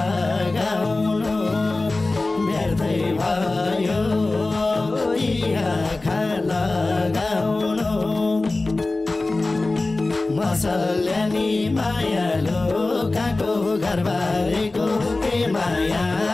व्यर्थै भयो यी आँखा लगाउनु मसल्यानी मायालु काको घरबारेको के माया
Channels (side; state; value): right; quieter; 3.1 dB